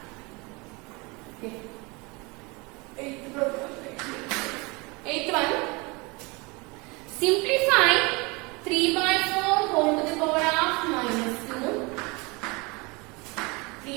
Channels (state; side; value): quieter; left; 27.0 dB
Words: Okay. 8th one. Simplify 3 by 4 whole to the power of minus 2.